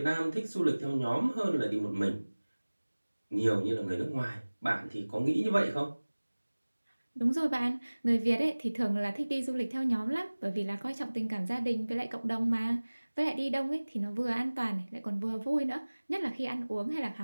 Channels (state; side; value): inverted; both; correlation -1.00